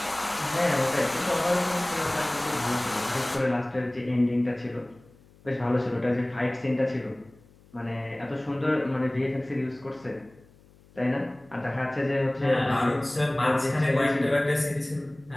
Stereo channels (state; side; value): noise; left; hum, 27 dB below the sound